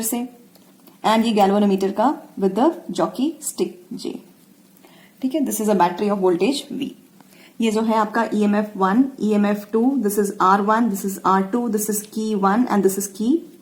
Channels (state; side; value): identical; both; correlation 1.00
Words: से, एंड ये गैल्वेनोमीटर का with the jockey stick J. ठीक है, this is a battery of voltage V. ये जो है आपका EMF 1, EMF 2, this is R1, this is R2, this is की 1 एंड दिस इज की